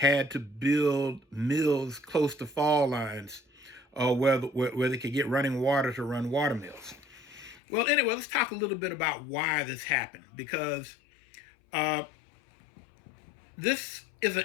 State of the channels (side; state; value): right; drops out; at 7.6 s